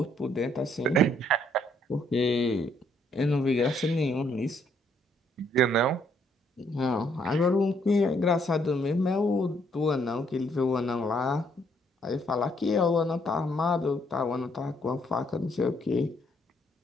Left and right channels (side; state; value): both; normal; correlation 0.69